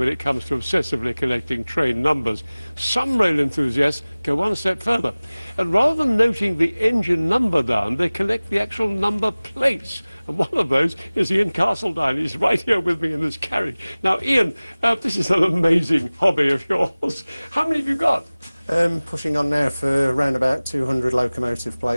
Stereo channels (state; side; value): inverted; both; correlation -0.99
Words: it comes to obsessively collecting train numbers. Some rail enthusiasts go one step further. And rather than noting the engine number down, they collect the actual number plates. And one of those is Ian Castledine. He's right here with me in this carriage. Now, Ian, this is an amazing hobby of yours. How many have you got? Pushing on now for around about 200 locomotive